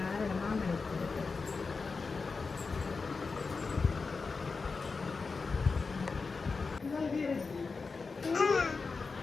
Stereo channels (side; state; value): right; quieter; 4.5 dB